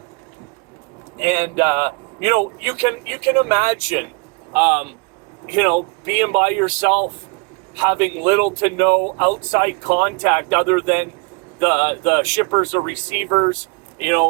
you know, you can imagine, you know, being by yourself, having little to no outside contact other than the shippers or receivers. You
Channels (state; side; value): quieter; left; 31.2 dB